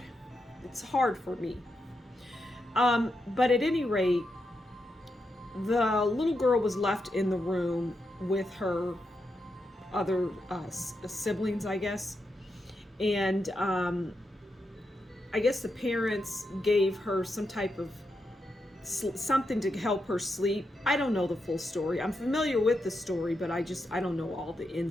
It's hard for me. But at any rate, the little girl was left in the room with her other siblings, I guess. And I guess the parents gave her some type of something to help her sleep. I don't know the full story. I'm familiar with the story, but I don't know all the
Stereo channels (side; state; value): both; normal; correlation 0.85